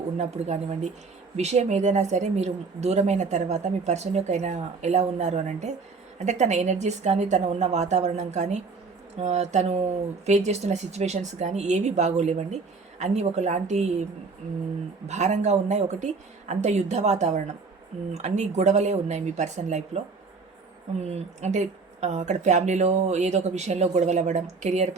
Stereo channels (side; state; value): left; quieter; 4.4 dB